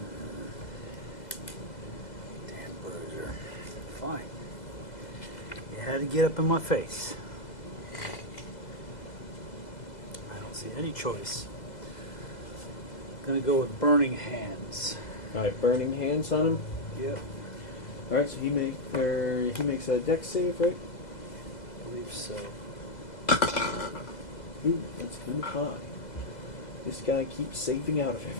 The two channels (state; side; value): late; right; 2.0 ms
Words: Damn bruiser. Fine. You had to get up in my face. I don't see any choice. Gonna go with burning hands. Alright, burning hands on him. Yep. Alright, so he makes a dex save, right? I believe so. Ooh, that's kind of high. This guy keeps saving out of